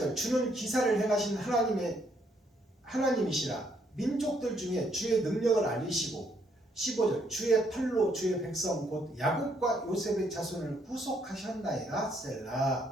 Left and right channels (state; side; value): normal; both; correlation 0.71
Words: 주는 기사를 행하신 하나님이시라. 민족들 중에 주의 능력을 알리시고 15절 주의 팔로 주의 백성 곧 야곱과 요셉의 자손을 구속하셨나이다.